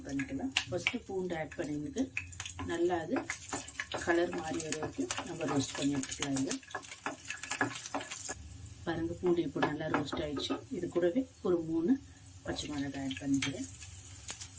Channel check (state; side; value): identical; both; correlation 1.00